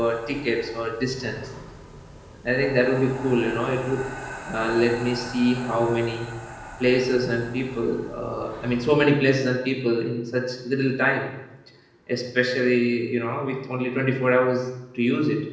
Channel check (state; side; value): identical; both; correlation 1.00